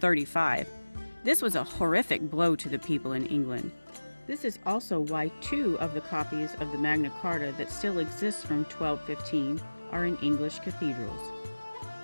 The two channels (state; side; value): inverted; both; correlation -1.00